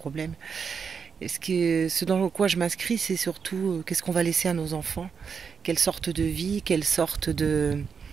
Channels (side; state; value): left; quieter; 6.1 dB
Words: Et ce dans quoi je m'inscris, c'est surtout qu'est-ce qu'on va laisser à nos enfants, quelle sorte de vie, de quelle